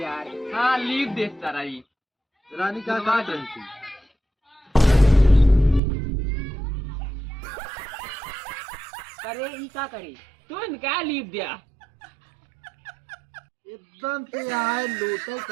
यार। हाँ लीव देखता रही। रानी का बुलवा कर दे। रही थी। करे ई का करे तू क्या लीप दिया? एकदम से आए लोटे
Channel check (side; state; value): left; drops out; at 5.8 s